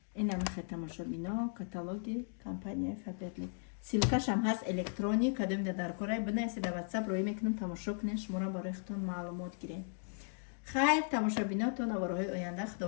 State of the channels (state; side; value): silent; right; digital silence